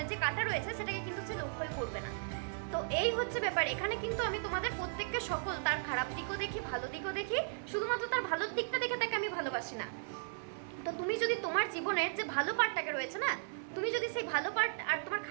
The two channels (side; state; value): left; silent; 54 dB below the other